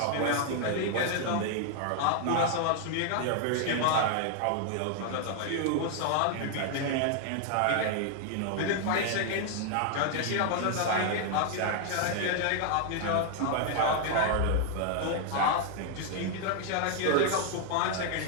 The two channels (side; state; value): both; different; correlation 0.00